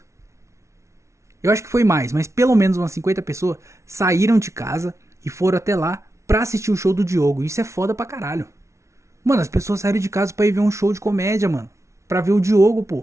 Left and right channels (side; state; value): left; late; 0.14 ms